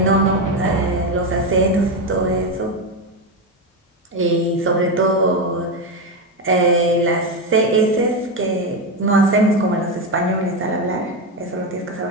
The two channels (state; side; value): normal; both; correlation 0.12